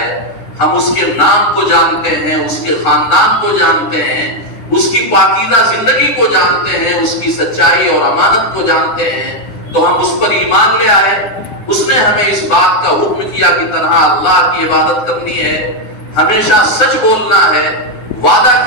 ہم اس کے نام کو جانتے ہیں, اس کے خاندان کو جانتے ہیں, اس کی پاکیزہ زندگی کو جانتے ہیں, اس کی سچائی اور امانت کو جانتے ہیں, تو ہم اس پر ایمان لے آئے. اس نے ہمیں اس بات کا حکم کیا کہ تنہا اللہ کی عبادت کرنی ہے, ہمیشہ سچ بولنا ہے, وعدہ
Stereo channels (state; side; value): late; right; 9.4 ms